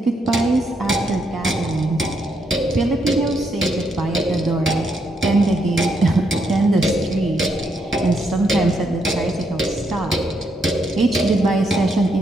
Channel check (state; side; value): normal; both; correlation 0.77